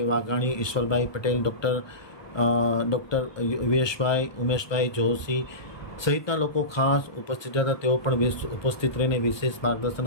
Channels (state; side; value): late; right; 1.2 ms